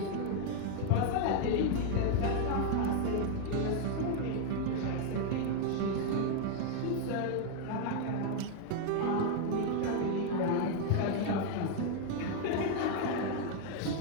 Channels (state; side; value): different; both; correlation 0.00